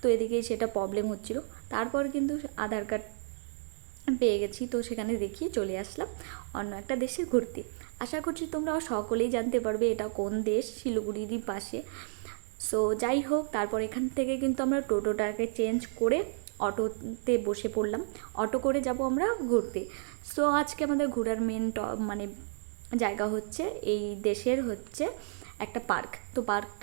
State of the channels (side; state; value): left; silent; digital silence